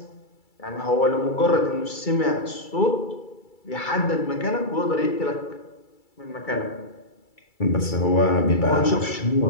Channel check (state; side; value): late; right; 2.3 ms